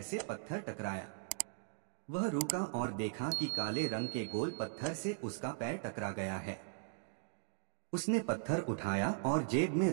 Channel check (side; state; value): left; silent; digital silence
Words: से पत्थर टकराया। वह रुका और देखा कि काले रंग के गोल पत्थर से उसका पैर टकरा गया है। उसने पत्थर उठाया और जेब में